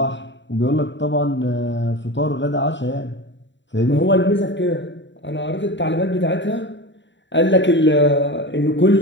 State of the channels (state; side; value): late; right; 0.53 ms